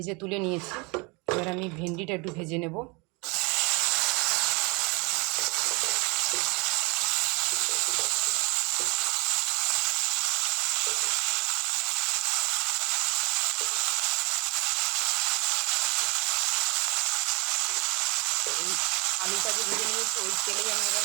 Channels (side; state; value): left; quieter; 28.6 dB